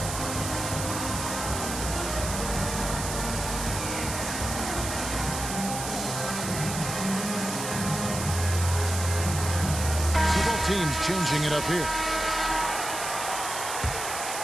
teams changing it up here.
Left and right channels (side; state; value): right; noise; hiss, 5 dB below the sound